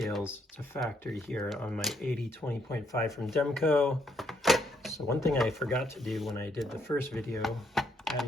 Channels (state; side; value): normal; both; correlation 0.73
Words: to factory here on my 80/20.5 from Demko. So one thing I forgot to do when I did the first video,